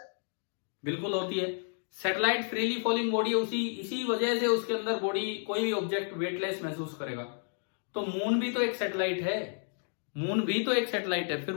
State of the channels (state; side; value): silent; right; 57 dB below the other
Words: बिल्कुल होती है। सैटेलाइट फ्रीली फॉलिंग बॉडी, इसी वजह से उसके अंदर बॉडी, कोई भी ऑब्जेक्ट वेटलेस महसूस करेगा। तो मून भी तो एक सैटेलाइट है, मून भी तो एक सैटेलाइट है, फिर